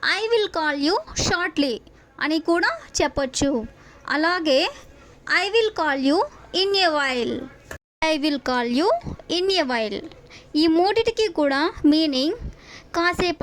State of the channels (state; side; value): identical; both; correlation 1.00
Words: I will call you shortly అని కూడా చెప్పొచ్చు. అలాగే I will call you in a while. I will call you in a while ఈ మూడిటికి కూడా మీనింగ్